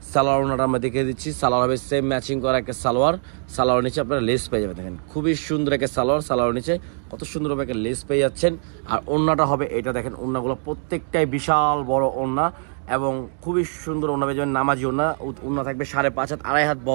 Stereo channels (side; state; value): left; silent; 57 dB below the other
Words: সালোয়ার ওনাটা আমরা দেখে দিচ্ছি, সালোয়ার হবে সেম ম্যাচিং করা একটা সালোয়ার। সালোয়ার নিচে আপনারা লেস পেয়ে যাবেন, দেখেন খুবই সুন্দর একটা সালোয়ার। সালোয়ার নিচে কত সুন্দরভাবে একটা লেস পেয়ে যাচ্ছেন। আর ওড়নাটা হবে এটা, দেখেন ওড়নাগুলো প্রত্যেকটাই বিশাল বড় ওড়না এবং খুবই সুন্দর ওড়না পেয়ে যাবেন। নামাজি ওড়না থাকবে 5.5 হাত, 2.5 হাত